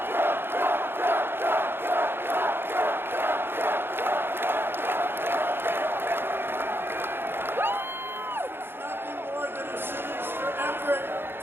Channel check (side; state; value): left; late; 0.10 ms